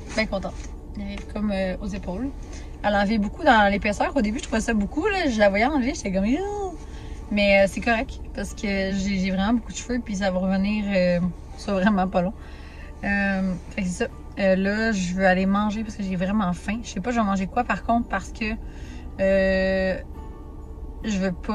Bien contente. Elle est comme aux épaules. Elle a enlevé beaucoup dans l'épaisseur. Au début, je trouvais ça beaucoup. Là. Je la voyais enlever, j'étais comme... Mais c'est correct parce que j'ai vraiment beaucoup de cheveux puis ça va revenir soit vraiment pas long. Fait que c'est ça. Là, je veux aller manger parce que j'ai vraiment faim. Je sais pas je vais manger quoi par contre parce que je veux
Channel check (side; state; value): both; identical; correlation 1.00